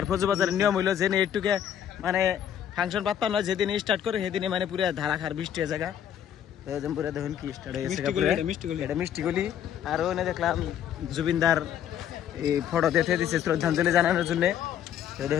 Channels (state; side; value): quieter; right; 9.9 dB